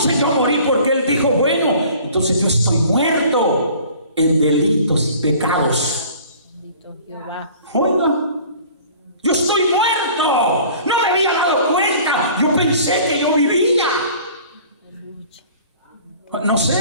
yo morí, porque él dijo: bueno, entonces yo estoy muerto en delitos y pecados. Bendito Jehová. Oiga, yo estoy muerto, no me había dado cuenta, yo pensé que yo vivía. No sé,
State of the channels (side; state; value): both; inverted; correlation -0.48